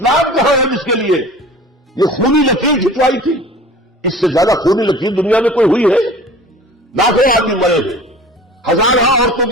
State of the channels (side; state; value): both; normal; correlation 0.42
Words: کہاں ہے جس کے لیے یہ خونی لکیر کھنچوائی تھی؟ اس سے زیادہ خونی لکیر دنیا میں کوئی ہوئی ہے؟ لاکھوں آدمی مرے ہیں، ہزاروں عورتوں